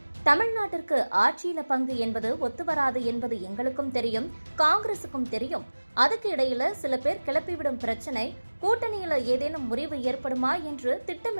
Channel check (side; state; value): both; inverted; correlation -1.00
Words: தமிழ்நாட்டிற்கு ஆட்சியில பங்கு என்பது ஒத்துவராது என்பது எங்களுக்கும் தெரியும், காங்கிரசுக்கும் தெரியும். அதுக்கு இடையில சில பேர் கிளப்பிவிடும் பிரச்சனை, கூட்டணியில ஏதேனும் முறிவு ஏற்படுமா என்று